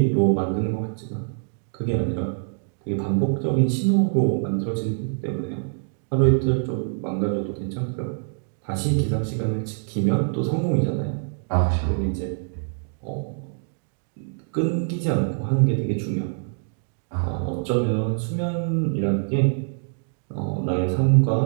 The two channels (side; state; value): left; silent; digital silence